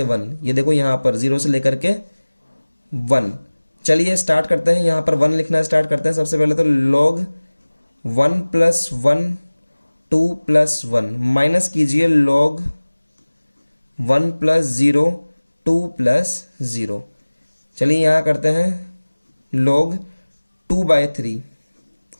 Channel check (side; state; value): both; inverted; correlation -1.00